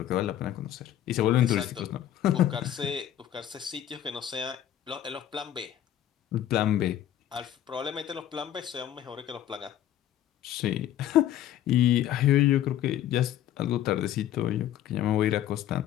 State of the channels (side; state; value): right; quieter; 11.6 dB